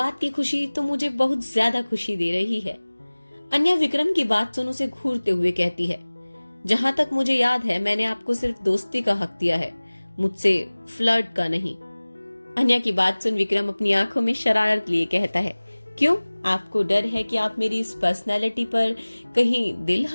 की खुशी तो मुझे बहुत ज्यादा खुशी दे रही है। अन्या विक्रम की बात सुन उसे घूरते हुए कहती है, जहां तक मुझे याद है मैंने आपको सिर्फ दोस्ती का हक दिया है, मुझसे फ्लर्ट का नहीं। अन्या की बात सुन विक्रम अपनी आंखों में शरारत लिए कहता है, क्यों? आपको डर है कि आप मेरी इस पर्सनैलिटी पर कहीं दिल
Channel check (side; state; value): both; inverted; correlation -1.00